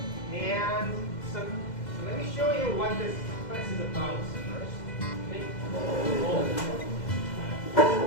And so let me show you what this class is about first.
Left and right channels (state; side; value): late; right; 2.0 ms